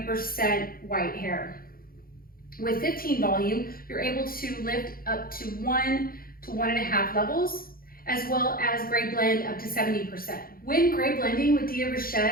white hair. With 15 volume, you're able to lift up to 1 to 1.5 levels, as well as gray blend up to 70%. When gray blending with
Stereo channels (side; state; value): right; late; 0.42 ms